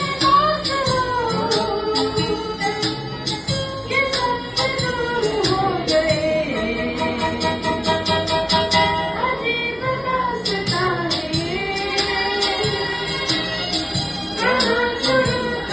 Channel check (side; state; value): both; identical; correlation 1.00